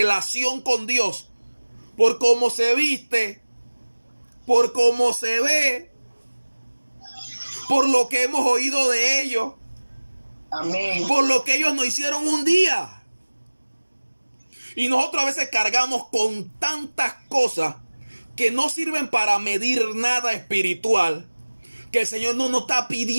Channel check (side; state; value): both; inverted; correlation -1.00